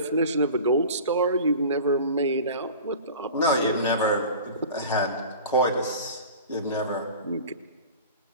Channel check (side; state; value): both; inverted; correlation -0.38